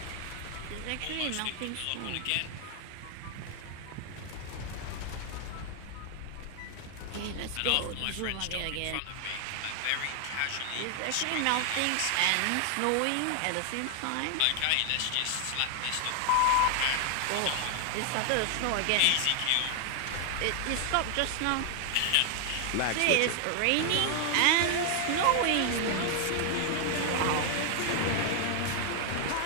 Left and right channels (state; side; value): different; both; correlation 0.00